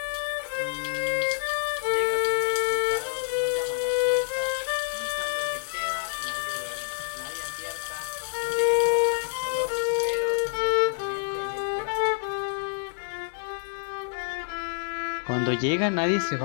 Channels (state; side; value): silent; right; 60 dB below the other